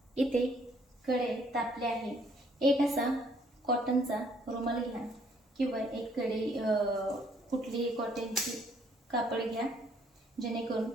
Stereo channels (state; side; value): normal; both; correlation 0.65